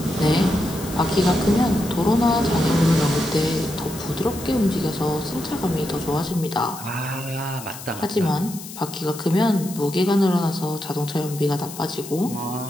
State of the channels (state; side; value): noise; left; hiss, 13 dB below the sound